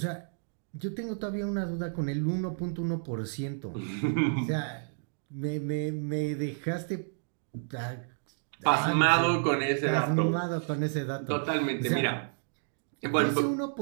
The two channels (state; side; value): silent; left; digital silence